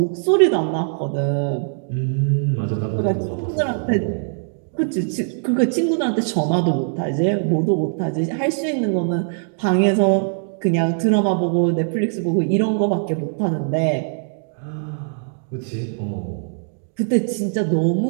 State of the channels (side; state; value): left; silent; digital silence